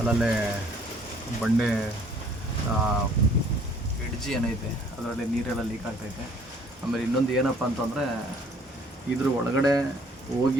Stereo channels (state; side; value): normal; both; correlation 0.59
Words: ಬಂಡೆ ಎಡ್ಜಿ ಏನೈತೆ ಅದರಲ್ಲಿ ನೀರೆಲ್ಲ ಲೀಕ್ ಆಗ್ತೈತೆ. ಆಮೇಲೆ ಇನ್ನೊಂದು ಏನಪ್ಪ ಅಂತಂದರೆ ಇದ್ರ ಒಳಗಡೆ